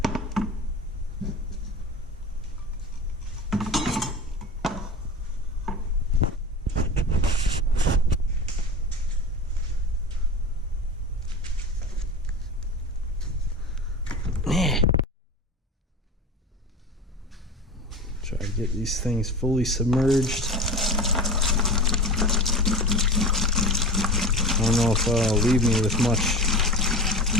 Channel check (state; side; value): normal; both; correlation 0.31